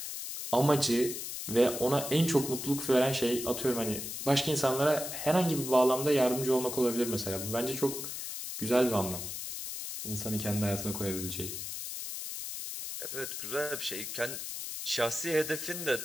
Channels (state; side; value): noise; left; hiss, 6 dB below the sound